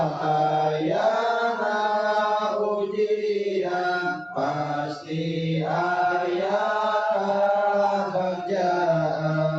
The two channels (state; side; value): identical; both; correlation 1.00